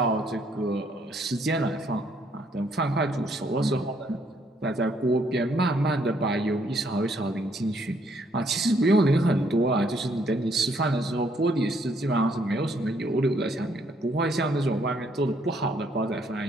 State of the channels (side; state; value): both; normal; correlation 0.69